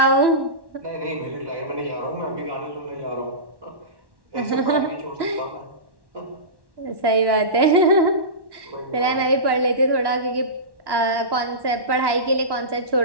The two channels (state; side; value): late; left; 1.1 ms